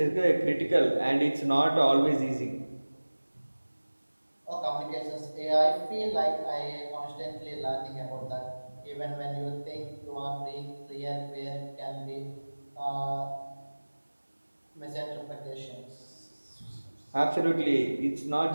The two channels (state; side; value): inverted; both; correlation -1.00